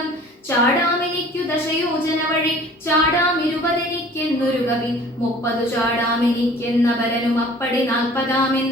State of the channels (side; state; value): both; normal; correlation 0.49